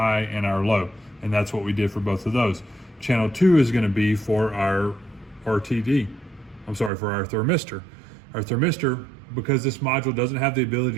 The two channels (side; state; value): left; drops out; at 6.9 s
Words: and our low. And that's what we did for both of those. Channel 2 is going to be for our RTD. For our thermistor. Our thermistor, because this module doesn't have the ability